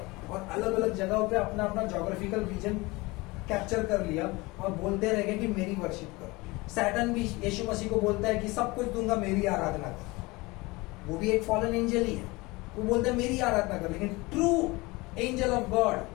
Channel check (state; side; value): quieter; right; 23.2 dB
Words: और अलग अलग जगहों पे अपना अपना ज्योग्राफिकल रीजन कैप्चर कर लिया और बोलते रह गए कि मेरी वर्शिप करो। सैटन भी यीशु मसीह को बोलता है कि सब कुछ दूंगा, मेरी आराधना कर। वो भी एक फॉलन एंजल ही है, वो बोलता है मेरी आराधना कर। लेकिन ट्रू एंजल ऑफ गॉड